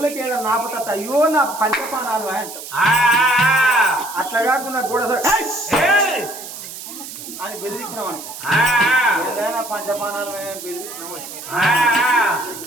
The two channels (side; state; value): right; noise; hiss, 12 dB below the sound